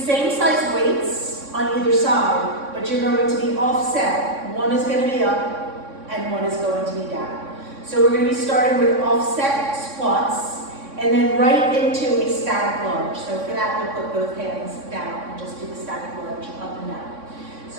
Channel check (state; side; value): late; left; 3.6 ms